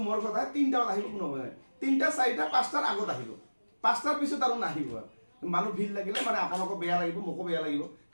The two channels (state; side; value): inverted; both; correlation -1.00